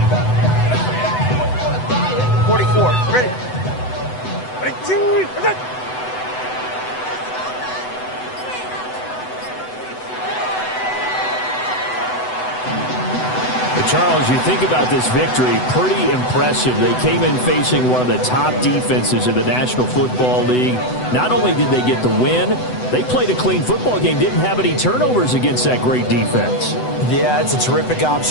Charles, you think about this victory, pretty impressive. They came in facing one of the top defenses in the National Football League. Not only did they get the win, they played a clean football game, didn't have any turnovers against that great defense. Yeah, it's a terrific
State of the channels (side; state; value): right; late; 7.9 ms